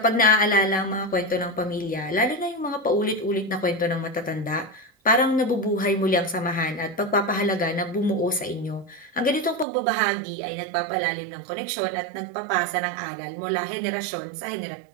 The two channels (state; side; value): drops out; left; at 9.7 s